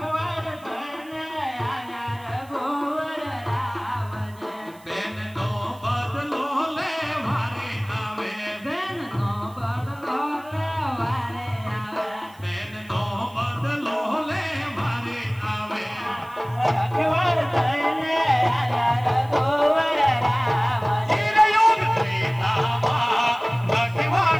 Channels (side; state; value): right; noise; hiss, 26 dB below the sound